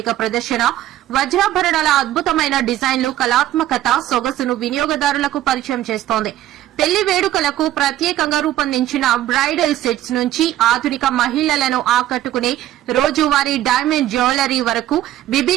ప్రదర్శన వజ్రాభరణాల అద్భుతమైన డిజైన్లు, కళాత్మకత, సొగసును వినియోగదారులకు పరిచయం చేస్తోంది. పెళ్లి వేడుకలకు ప్రత్యేకంగా రూపొందించిన బ్రైడల్ సెట్స్ నుంచి ఆధునిక మహిళలను ఆకట్టుకునే రోజువారీ డైమండ్ జ్యువెలరీ వరకు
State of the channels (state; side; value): quieter; left; 13.3 dB